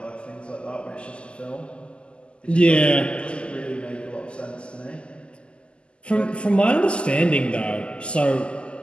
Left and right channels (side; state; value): right; late; 0.052 ms